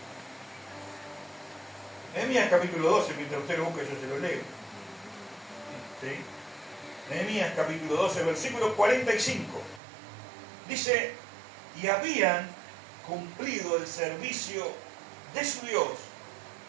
Nehemías capítulo 12, mientras usted lo busque yo se lo leo. ¿Sí? Nehemías capítulo 12, versículo 45. Dice, y habían cumplido el servicio de su Dios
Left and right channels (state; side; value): drops out; left; at 9.8 s